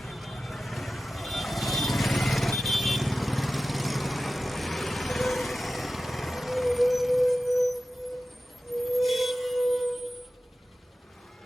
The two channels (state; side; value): normal; both; correlation 0.94